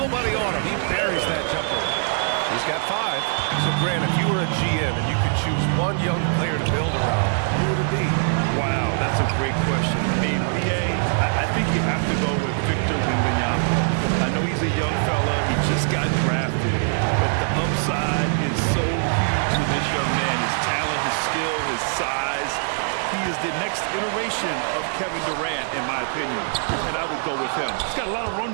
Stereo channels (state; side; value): silent; left; digital silence